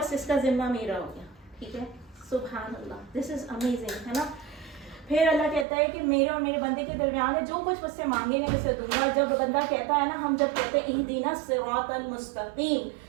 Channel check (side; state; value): left; drops out; at 5.7 s